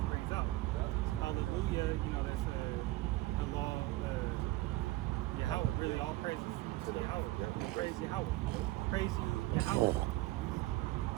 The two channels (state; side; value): quieter; left; 18.6 dB